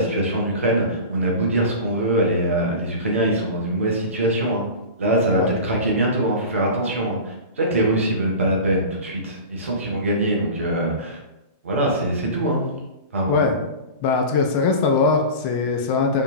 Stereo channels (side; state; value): both; inverted; correlation -0.32